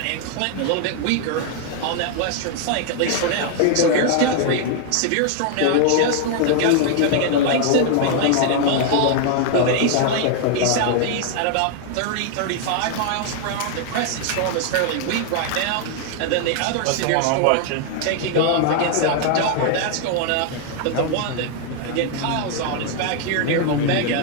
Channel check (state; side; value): different; both; correlation 0.00